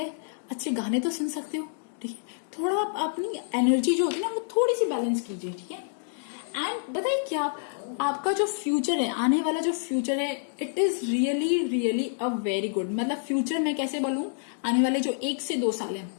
अच्छे गाने तो सुन सकते हो, ठीक है। थोड़ा आप अपनी एनर्जी जो होती है ना, वो थोड़ी सी बैलेंस कीजिए, ठीक है। एंड बताइए क्या, आपका जो फ्यूचर है, आने वाला जो फ्यूचर है, it is really really a very good. मतलब फ्यूचर मैं कैसे बोलूं, आने वाले जो 1 से 2 साल है,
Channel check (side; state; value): right; silent; digital silence